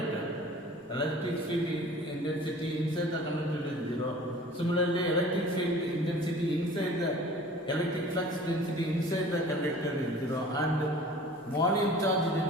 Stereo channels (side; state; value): both; normal; correlation 0.45